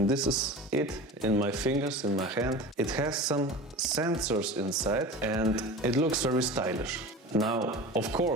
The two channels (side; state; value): both; normal; correlation 0.34